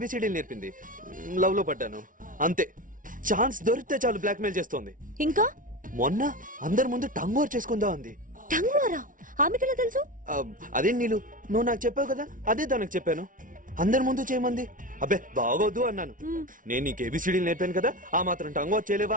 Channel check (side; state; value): left; late; 0.38 ms